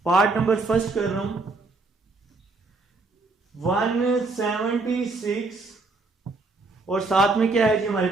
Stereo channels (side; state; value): left; quieter; 3.6 dB